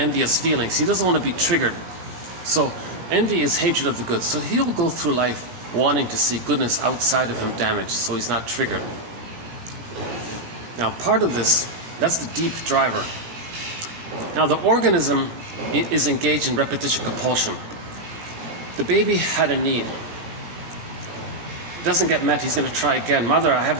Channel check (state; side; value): late; left; 17 ms